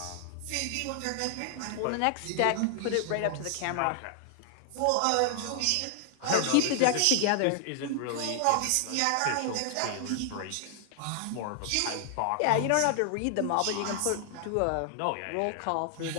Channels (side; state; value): both; different; correlation 0.00